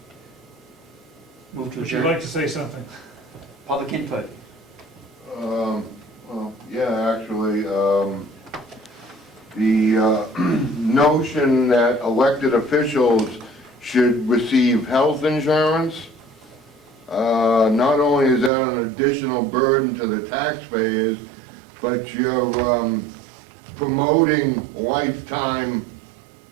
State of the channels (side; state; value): left; drops out; at 18.5 s